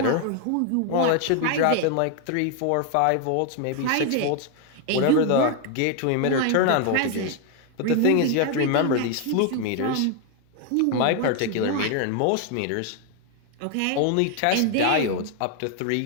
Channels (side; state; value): both; different; correlation 0.01